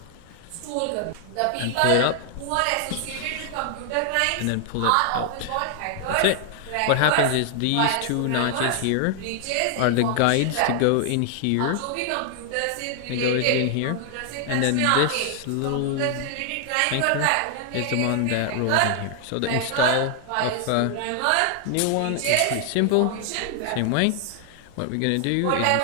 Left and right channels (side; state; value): both; different; correlation 0.00